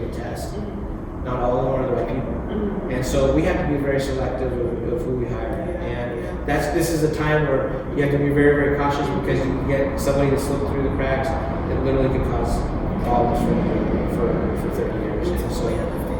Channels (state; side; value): identical; both; correlation 1.00